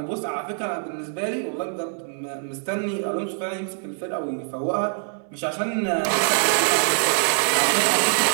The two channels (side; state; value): left; silent; digital silence